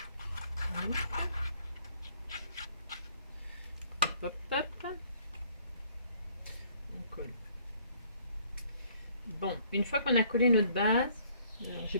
Hop, hop. On colle. Bon, une fois qu'on a collé notre base, j'ai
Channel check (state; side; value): inverted; both; correlation -0.61